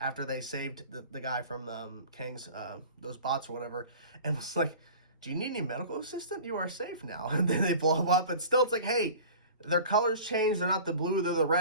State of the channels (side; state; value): both; inverted; correlation -0.41